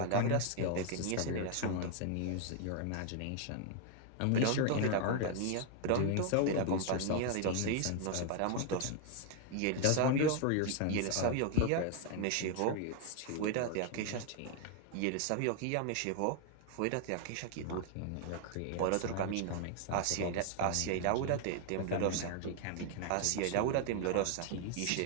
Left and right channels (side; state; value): both; different; correlation 0.00